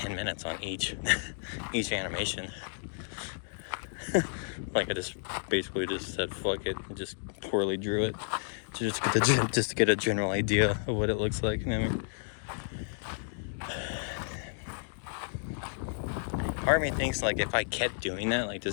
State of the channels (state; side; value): silent; right; digital silence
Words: minutes on each animation. Like I just basically just said fuck it and just poorly drew it to just get a general idea of what it looks like. You know what I mean? Part of me thinks like if I kept doing that, like